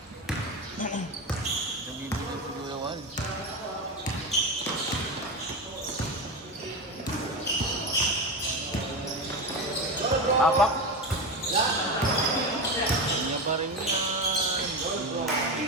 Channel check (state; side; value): normal; both; correlation 0.19